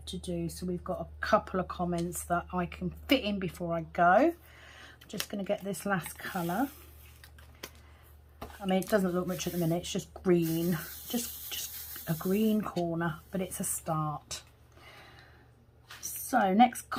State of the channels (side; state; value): both; identical; correlation 1.00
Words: to do. So we've got a couple of comments that I can fit in before I go. Just going to get this last colour. I mean, it doesn't look much at the minute. It's just green, just a green corner, but it's a start. So next